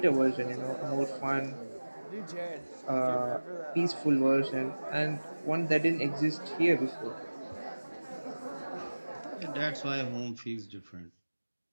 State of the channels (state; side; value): inverted; both; correlation -1.00